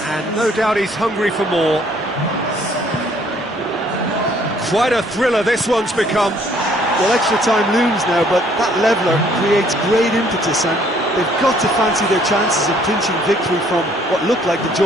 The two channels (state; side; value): normal; both; correlation 0.62